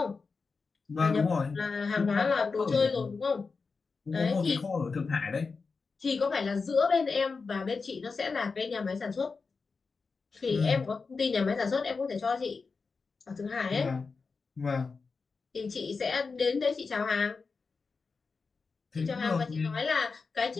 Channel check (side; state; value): right; quieter; 4.6 dB